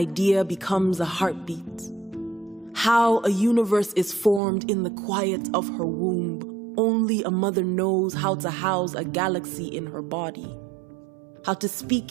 becomes a heartbeat, how a universe is formed in the quiet of her womb. Only a mother knows how to house a galaxy in her body, how to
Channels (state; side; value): drops out; left; at 4.4 s